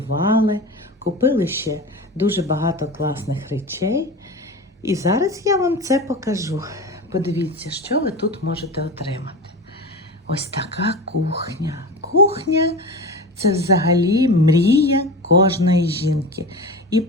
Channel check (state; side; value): normal; both; correlation 0.29